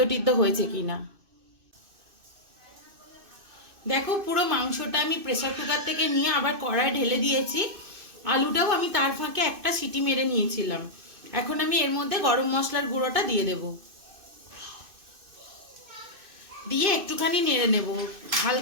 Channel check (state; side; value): late; left; 2.6 ms